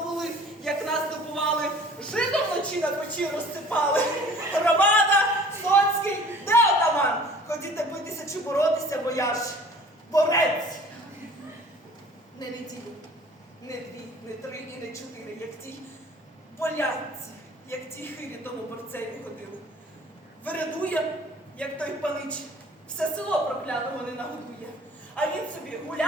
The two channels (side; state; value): both; normal; correlation 0.49